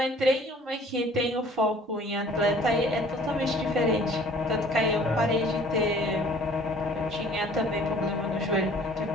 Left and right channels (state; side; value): normal; both; correlation 0.52